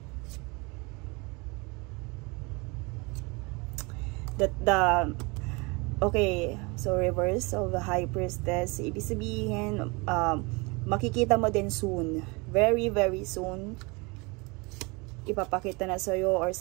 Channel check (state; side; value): quieter; left; 27.6 dB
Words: Okay, so reverse of the High Priestess. Ibig sabihin, makikita mo din soon. Very, very soon. Ipapakita na sa'yo or